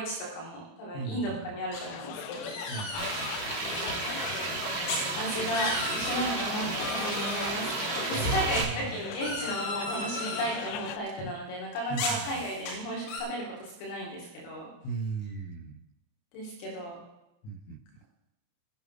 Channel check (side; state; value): right; late; 29 ms